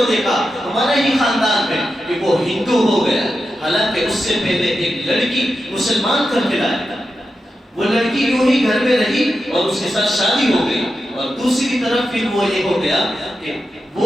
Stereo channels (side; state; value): both; normal; correlation 0.89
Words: دیکھا ہمارے ہی خاندان میں کہ وہ ہندو ہو گیا، حالانکہ اس سے پہلے ایک لڑکی مسلمان کر کے لایا، وہ لڑکی یوں ہی گھر میں رہی اور اس کے ساتھ شادی ہو گئی، اور دوسری طرف پھر وہ یہ ہو گیا کہ